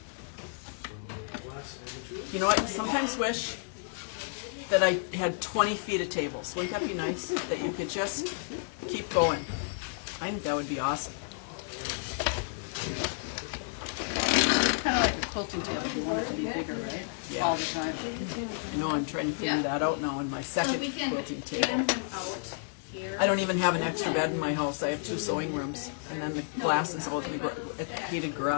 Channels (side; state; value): right; silent; 57 dB below the other